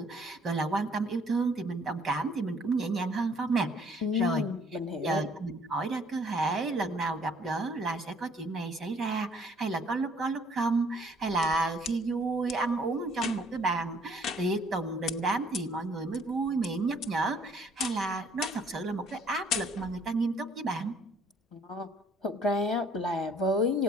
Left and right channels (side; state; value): both; normal; correlation 0.60